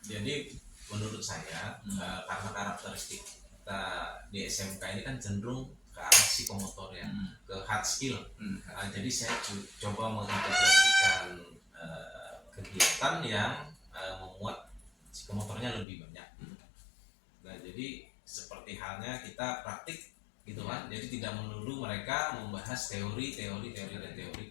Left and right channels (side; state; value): right; drops out; at 15.9 s